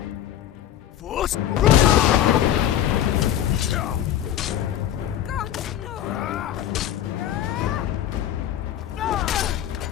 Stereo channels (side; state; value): right; quieter; 11.3 dB